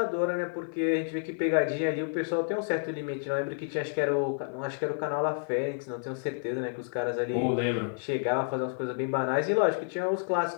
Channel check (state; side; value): silent; right; 58 dB below the other